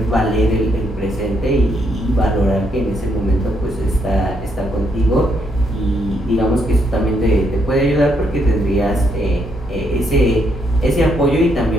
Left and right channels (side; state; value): both; normal; correlation 0.75